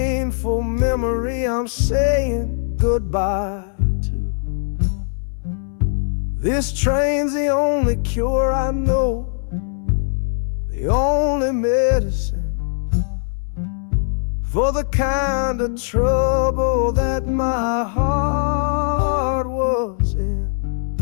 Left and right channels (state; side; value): silent; right; digital silence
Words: memory I'm saying goodbye to. This train's the only cure I know, the only medicine for the kind of trouble that my heart was in.